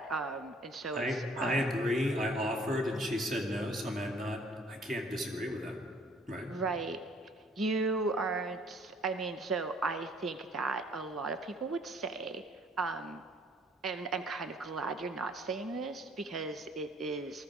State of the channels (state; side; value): normal; both; correlation 0.59